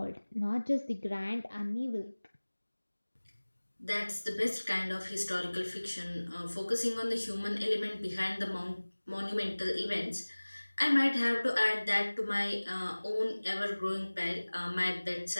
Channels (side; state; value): both; inverted; correlation -1.00